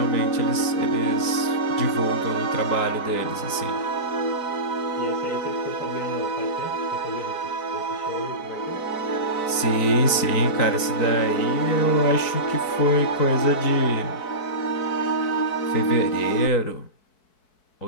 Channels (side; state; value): right; late; 4.6 ms